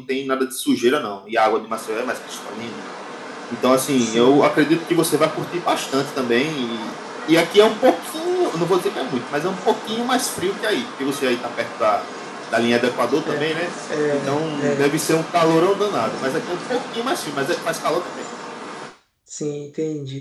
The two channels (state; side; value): identical; both; correlation 1.00